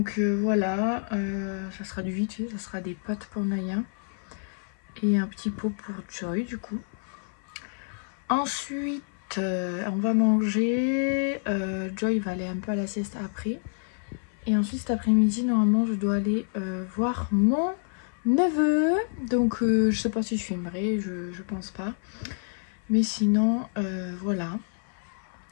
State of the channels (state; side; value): silent; right; 59 dB below the other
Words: voilà, ça sera du vite fait, ça sera des pâtes pour Naya et un petit pot pour Joy du coup. Ensuite, on va manger, Joy va aller un peu à la sieste après. Et ensuite cet après-midi, normalement, je dois aller voir mon neveu. Donc je sais pas si je filmerai, je pense pas. Mais sinon, voilà.